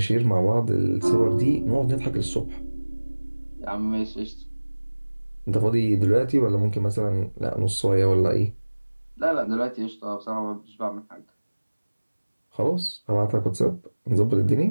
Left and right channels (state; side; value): inverted; both; correlation -1.00